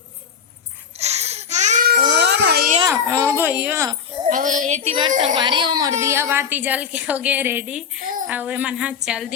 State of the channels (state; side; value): quieter; right; 7.0 dB